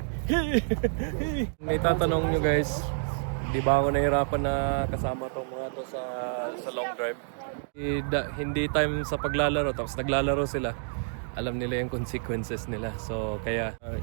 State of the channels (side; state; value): left; silent; digital silence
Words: Hey! Hey! May tatanong nyo guys. Di ba ako nahirapan na kasama tong mga to sa long drive? Hindi time sa paglalaro. Tapos naglalaro sila. Alam nila yung consequences nila. So kaya